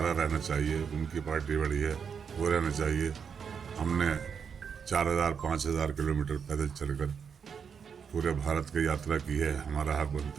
रहना चाहिए, उनकी पार्टी बड़ी है, वो रहना चाहिए, हमने 4000-5000 किलोमीटर पैदल चलकर पूरे भारत की यात्रा की है, हमारा हक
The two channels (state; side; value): quieter; left; 6.7 dB